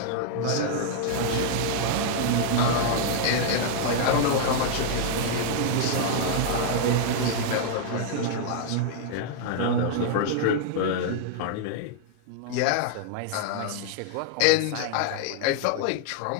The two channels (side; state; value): both; different; correlation -0.01